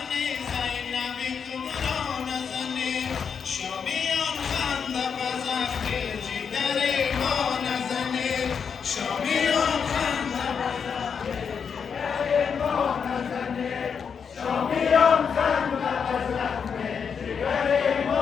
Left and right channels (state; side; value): quieter; right; 6.6 dB